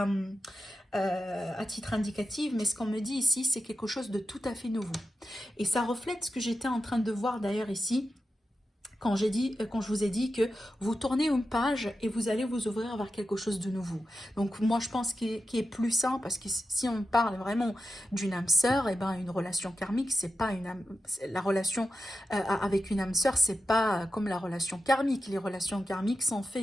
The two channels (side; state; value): both; normal; correlation 0.90